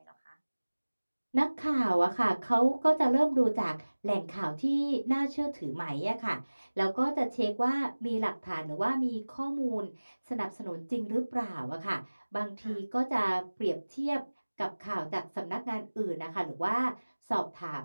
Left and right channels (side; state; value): both; inverted; correlation -1.00